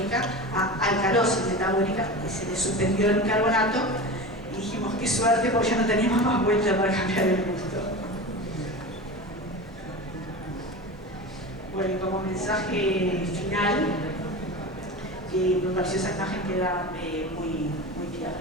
a alcalosis metabólica, y se le suspendió el bicarbonato y dijimos, qué suerte, porque ya no teníamos más vuelta para cambiar el gusto. Bueno, y como mensaje final, me pareció esa imagen queda muy clara.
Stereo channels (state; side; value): normal; both; correlation 0.29